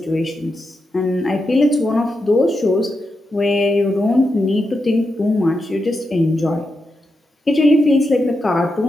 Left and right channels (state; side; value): normal; both; correlation 0.87